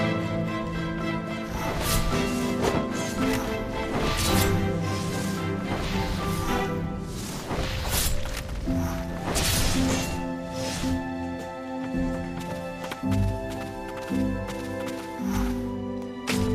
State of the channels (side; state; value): both; identical; correlation 1.00